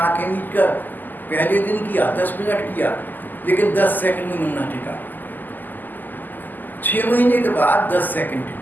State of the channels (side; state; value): right; late; 0.087 ms